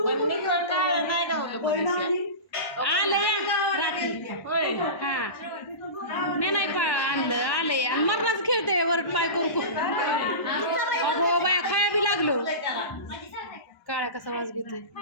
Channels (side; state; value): right; late; 1.1 ms